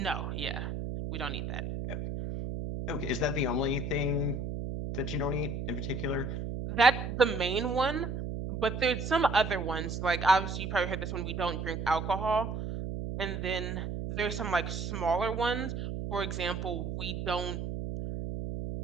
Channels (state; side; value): noise; right; hum, 4 dB below the sound